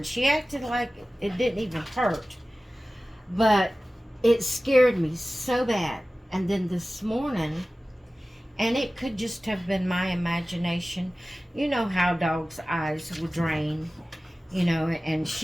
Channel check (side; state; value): both; normal; correlation 0.96